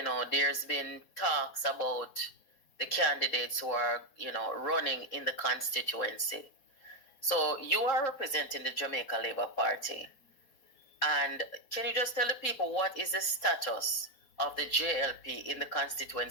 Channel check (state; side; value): late; right; 4.1 ms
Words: there's been talks about the candidates who are, running in the constituency. So you are representing the Jamaica Labour Party. And can you just tell the people what is the status of the JLP in the